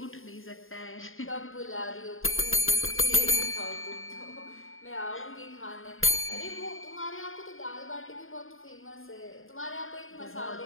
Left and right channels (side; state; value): right; late; 0.60 ms